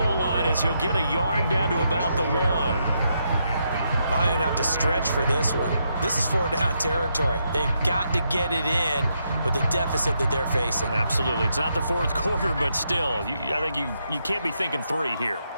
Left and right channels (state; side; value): inverted; both; correlation -0.79